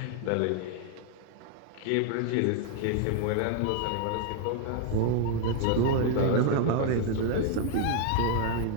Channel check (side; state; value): both; different; correlation 0.00